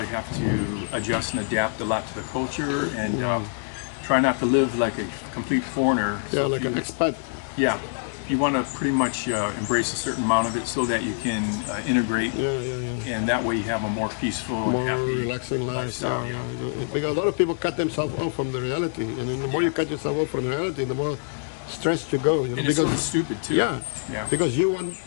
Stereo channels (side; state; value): right; silent; digital silence